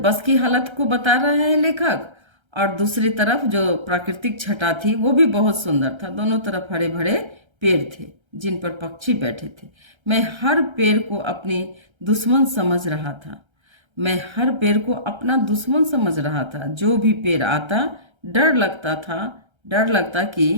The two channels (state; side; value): late; left; 1.3 ms